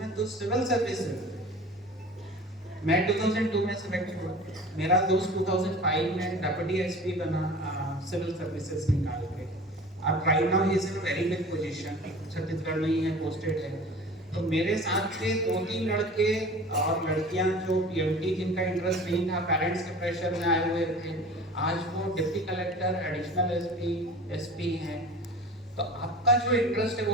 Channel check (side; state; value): both; normal; correlation 0.40